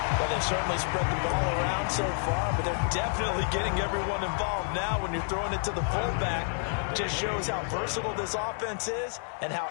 Well, they've certainly spread the ball around so far, but they're definitely getting everyone involved now when you're throwing it to the fullback. Just shows how versatile this offense is and how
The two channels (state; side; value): silent; right; 58 dB below the other